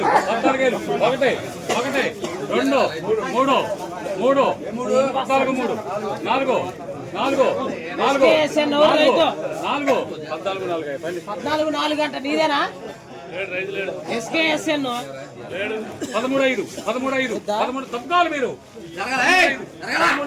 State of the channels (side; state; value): both; identical; correlation 1.00